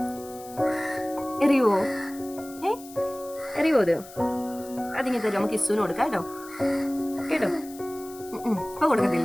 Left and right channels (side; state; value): left; noise; hiss, 19 dB below the sound